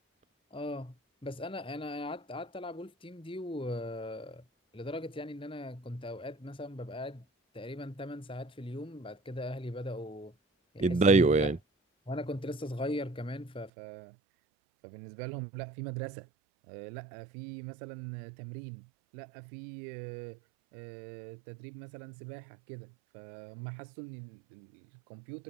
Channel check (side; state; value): left; drops out; at 13.7 s